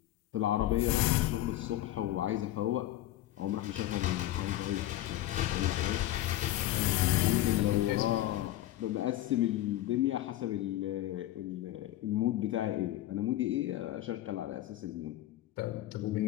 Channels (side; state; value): right; quieter; 14.6 dB